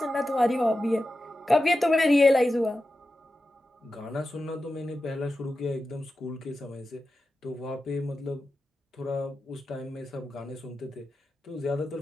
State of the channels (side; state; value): both; normal; correlation 0.92